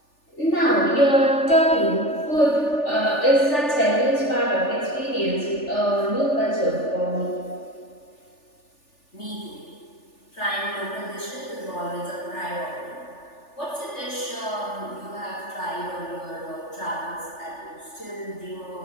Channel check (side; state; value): right; late; 3.4 ms